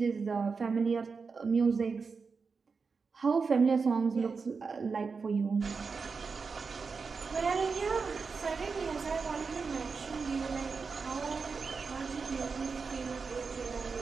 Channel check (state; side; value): quieter; left; 4.9 dB